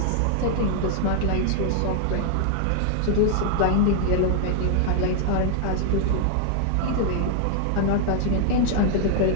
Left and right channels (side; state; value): both; different; correlation 0.00